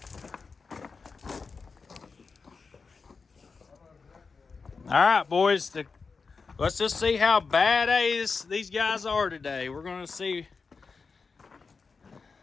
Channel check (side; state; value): right; quieter; 4.8 dB